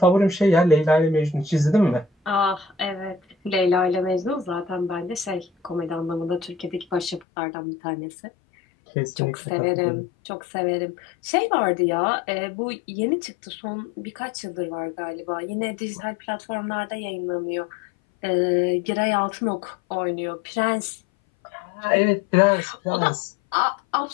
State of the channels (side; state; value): right; drops out; at 7.2 s